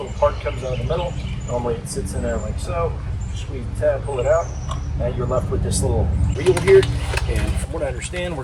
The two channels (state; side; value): identical; both; correlation 1.00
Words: part comes out of the middle. Normally it sits in there like so. Squeeze the tab, pull it out. Now you're left with this little wheel here. And from what I understand, we're